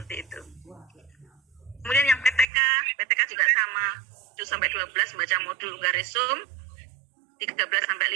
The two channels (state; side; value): drops out; left; at 2.5 s